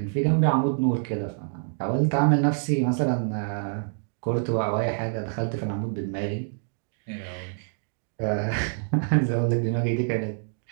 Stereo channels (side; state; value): left; silent; digital silence